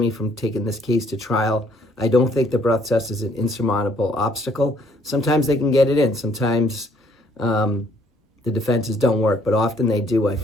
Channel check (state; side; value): normal; both; correlation 0.64